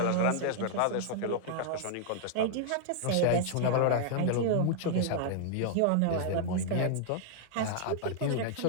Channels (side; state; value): both; different; correlation -0.01